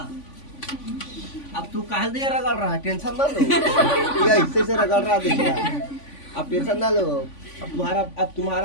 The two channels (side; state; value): right; late; 3.5 ms